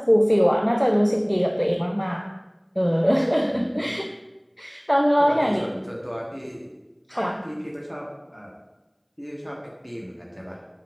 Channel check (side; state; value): both; identical; correlation 1.00